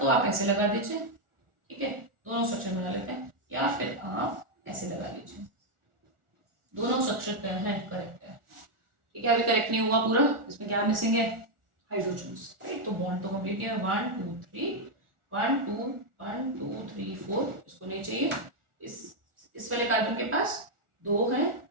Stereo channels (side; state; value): left; late; 1.4 ms